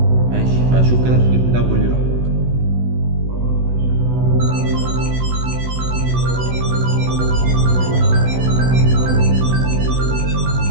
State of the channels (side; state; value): left; late; 16 ms